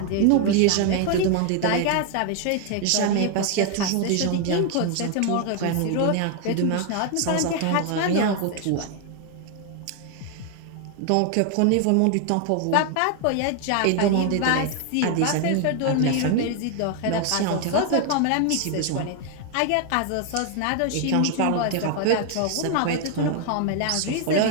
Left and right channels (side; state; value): both; different; correlation 0.01